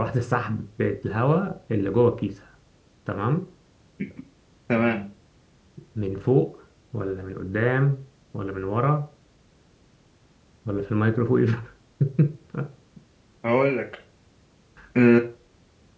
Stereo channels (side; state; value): both; identical; correlation 1.00